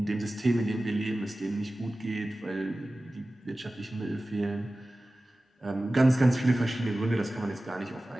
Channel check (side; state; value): both; normal; correlation 0.96